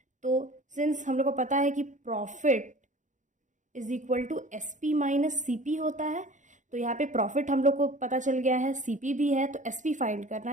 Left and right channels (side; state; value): left; late; 0.36 ms